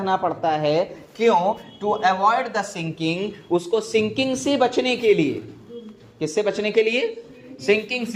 पड़ता है। क्यों? टू अवॉइड द सिंकिंग, उसको सिंकिंग से बचने के लिए। किससे बचने के लिए? सिंकिंग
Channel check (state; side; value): identical; both; correlation 1.00